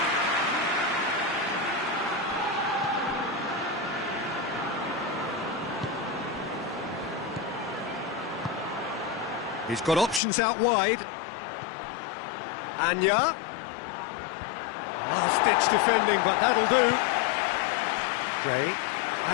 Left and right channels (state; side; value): drops out; right; at 10.2 s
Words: He's got options out wide. Anya. Last-ditch defending, but that'll do. Gray.